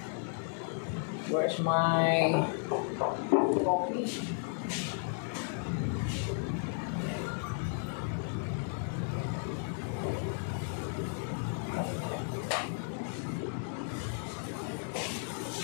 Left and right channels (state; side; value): silent; right; 55 dB below the other